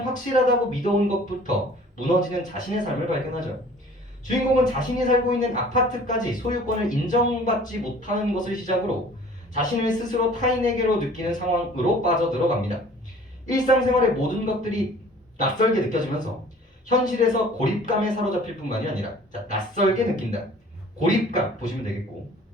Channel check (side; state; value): both; normal; correlation 0.50